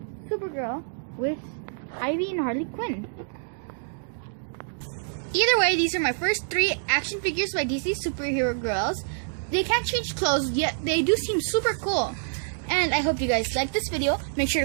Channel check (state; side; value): silent; left; digital silence